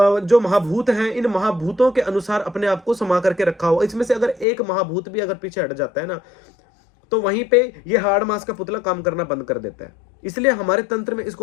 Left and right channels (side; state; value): right; drops out; at 4.5 s